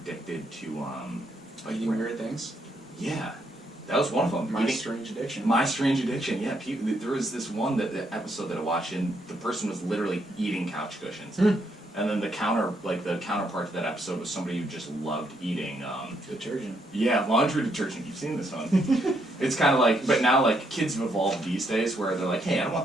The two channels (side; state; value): both; normal; correlation 0.75